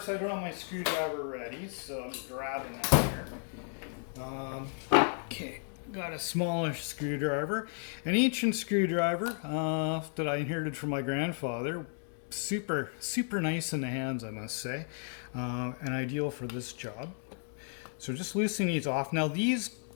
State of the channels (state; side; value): silent; right; 55 dB below the other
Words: I don't have my screwdriver ready, so I'm grabbing that here. Okay. Got a smallish screwdriver, an ancient screwdriver that I inherited from my grandfather. Super nice in the hands, I must say, and ideal for this job. So just loosening these off. Now these